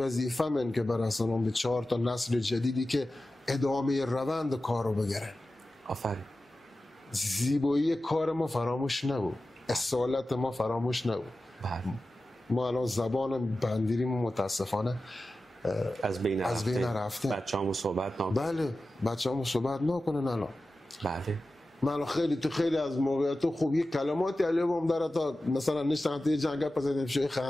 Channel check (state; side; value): normal; both; correlation 0.94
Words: من که برسونم به 4 تا نسل جدیدی که ادامه روند کارو بگیرن. آفرین. زیبایی کار ما فراموش نبود، اصالت ما فراموش نبود. ما الان زبان بندیریم متاسفانه از بین رفته. بچه‌هامو صحبت نکنن. بله بچه‌هامو صحبت نکنن الان. بله. من خیلی از موقعیت خوب یک کلماتی علیهم داره تا مثلا نشتم توی جنگل پس شوی